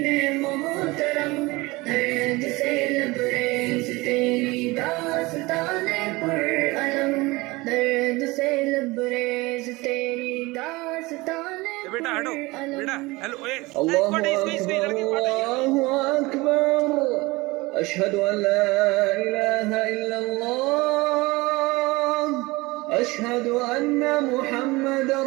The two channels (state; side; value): quieter; left; 22.4 dB